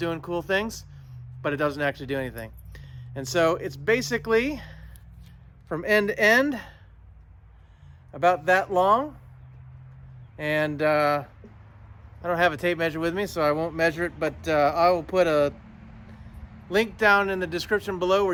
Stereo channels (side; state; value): both; identical; correlation 1.00